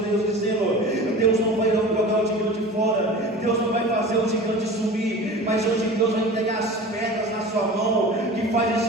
dizendo: Deus não vai jogar o gigante fora. Deus não vai fazer o gigante subir. Mas hoje Deus vai entregar as pedras na sua mão que faz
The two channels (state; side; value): normal; both; correlation 0.37